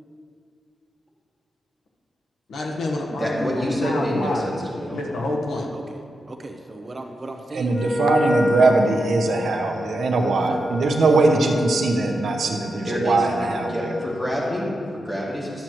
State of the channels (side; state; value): both; normal; correlation 0.87